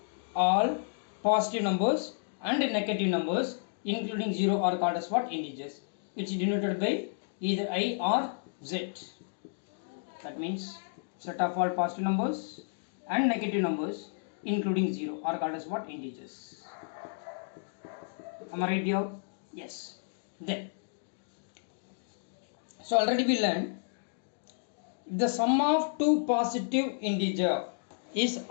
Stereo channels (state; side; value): silent; right; digital silence